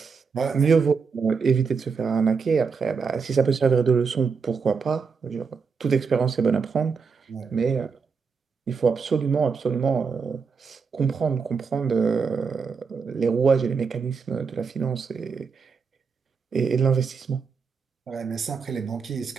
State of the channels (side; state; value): left; quieter; 5.4 dB